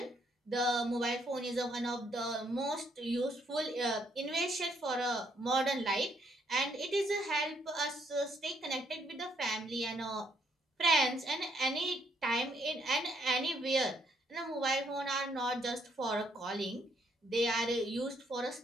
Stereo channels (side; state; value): both; normal; correlation 0.72